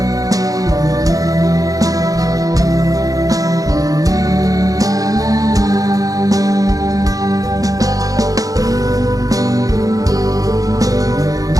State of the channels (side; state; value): left; late; 0.17 ms